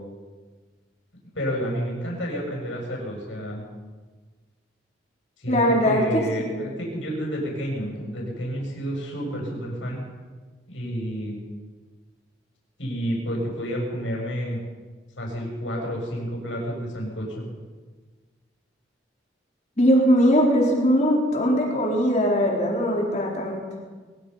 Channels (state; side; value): normal; both; correlation 0.53